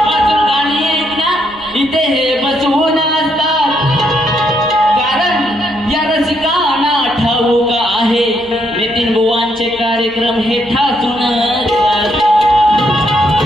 गाणी ऐकण्या इथे हे बसवून असतात. कारण या रसिकांना ठाऊक आहे नितीन बुवांचे कार्यक्रम हे ठासून असतात.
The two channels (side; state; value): right; noise; hum, 25 dB below the sound